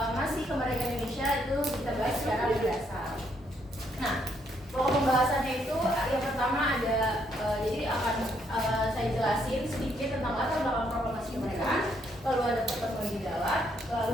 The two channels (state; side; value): normal; both; correlation 0.73